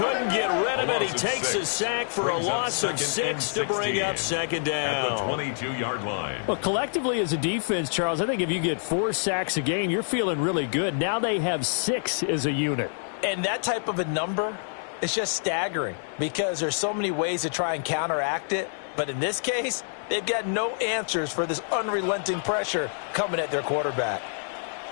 get rid of it. He takes a sack for a loss of 6 to bring up second down. At the 22-yard line. Well, collectively as a defense, Charles, I think if you get 4 sacks a game, you're feeling really good. Now they have 6 as a unit. And that type of a number is just staggering because there's so many ways to try and counteract it. But in this case, they've got no answers for this unrelenting pressure coming at their quarterback.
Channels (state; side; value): silent; right; digital silence